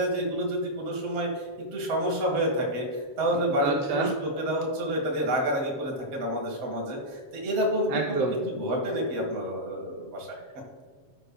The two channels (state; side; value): late; left; 7.3 ms